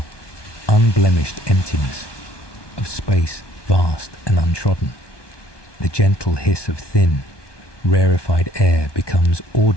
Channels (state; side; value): late; right; 1.2 ms